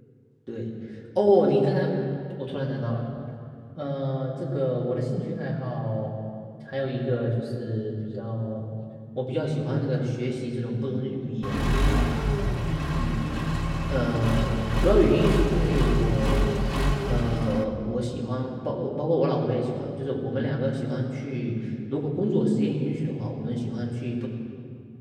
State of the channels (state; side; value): identical; both; correlation 1.00